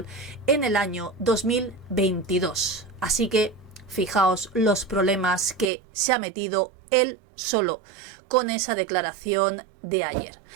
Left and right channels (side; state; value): left; drops out; at 5.7 s